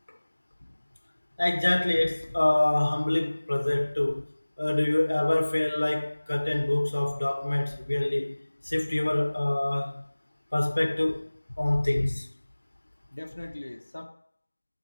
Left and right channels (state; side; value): inverted; both; correlation -1.00